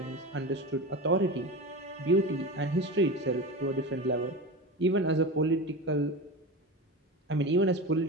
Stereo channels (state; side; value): normal; both; correlation 0.26